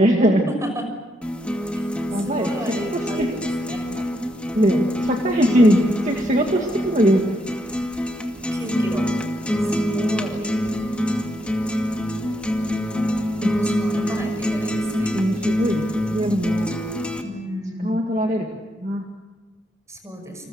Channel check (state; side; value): normal; both; correlation 0.78